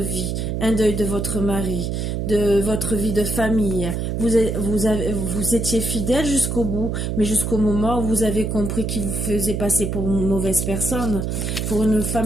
un deuil de votre mari, de votre vie de famille. Vous étiez fidèle jusqu'au bout, mais jusqu'au moment où vous avez compris qu'il vous faisait passer pour une mauvaise personne, pour une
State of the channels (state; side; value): noise; right; hum, 2 dB below the sound